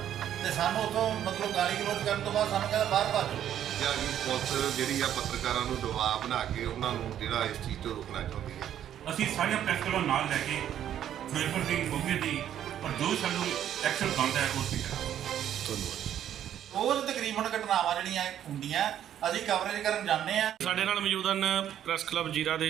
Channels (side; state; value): left; quieter; 10.6 dB